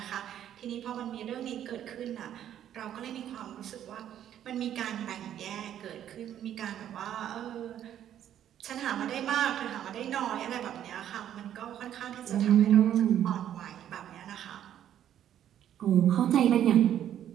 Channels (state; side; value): quieter; left; 10.7 dB